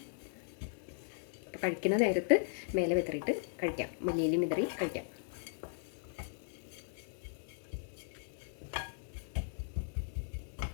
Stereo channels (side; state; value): right; silent; digital silence